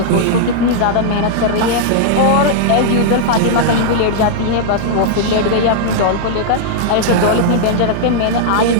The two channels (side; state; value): both; different; correlation -0.01